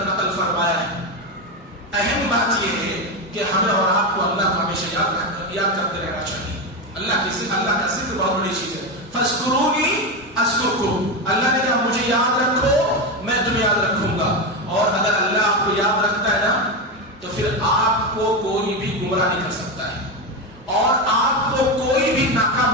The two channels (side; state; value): both; normal; correlation 0.14